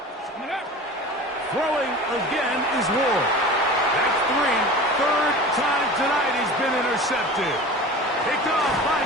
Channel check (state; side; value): normal; both; correlation 0.36